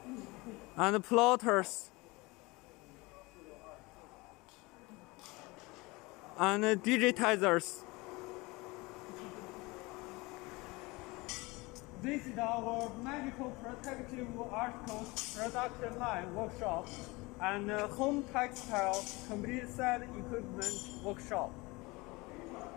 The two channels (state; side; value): quieter; right; 23.8 dB